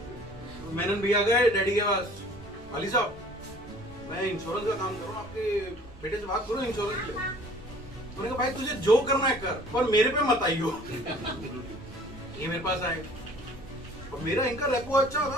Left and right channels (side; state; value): right; noise; rumble, 19 dB below the sound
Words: मेनन भैया गए डैडी के पास अली साहब मैं इंश्योरेंस का काम कर रहा हूँ आपके बेटे से बात करो इंश्योरेंस के लिए उन्होंने कहा भाई तुझे जो करना है कर पर मेरे पे मत आइयो ये मेरे पास आए और मेरा इनका रेपो अच्छा